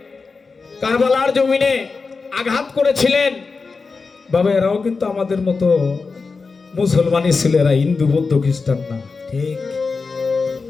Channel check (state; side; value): quieter; right; 4.5 dB